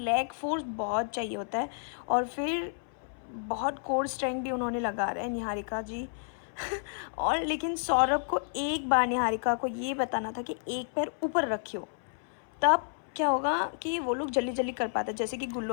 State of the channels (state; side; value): silent; right; 57 dB below the other